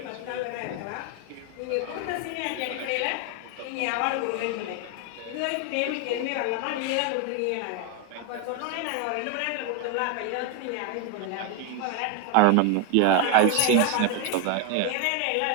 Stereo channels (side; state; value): both; different; correlation 0.01